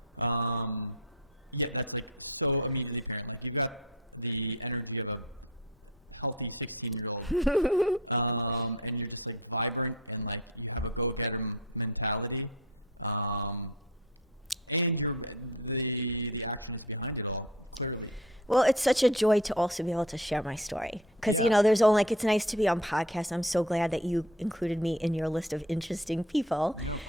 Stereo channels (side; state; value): both; normal; correlation 0.37